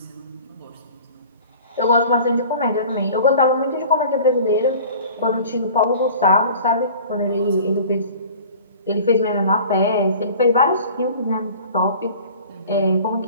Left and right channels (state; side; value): inverted; both; correlation -0.44